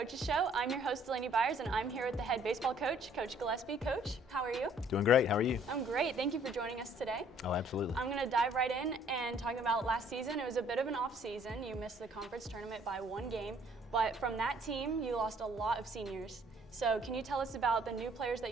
Show. I'm your host, Laney Byers, and I'm here with the head baseball coach, Coach Gillespie. Coach, how are you? Doing great. How are you? I'm great. Thank you for joining us today. Oh, absolutely. I'm going to dive right in and talk about last season. It was a bit of an off season. You missed the conference tournament by one game, but from that team, you lost a lot of seniors. So can you tell us about the new players that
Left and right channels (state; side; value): normal; both; correlation 0.60